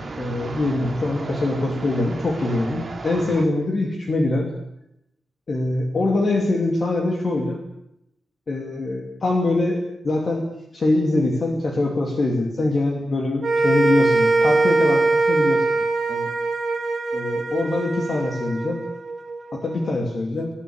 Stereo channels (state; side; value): normal; both; correlation 0.89